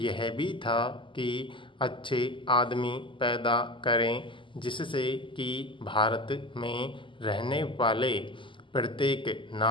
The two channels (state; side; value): late; right; 0.25 ms